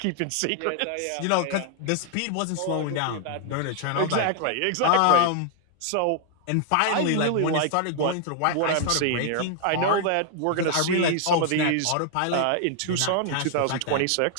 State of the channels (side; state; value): both; different; correlation 0.00